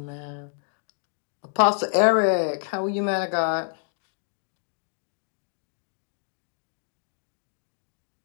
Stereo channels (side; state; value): right; silent; 59 dB below the other